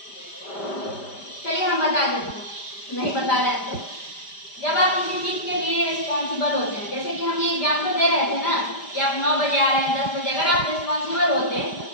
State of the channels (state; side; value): late; right; 5.0 ms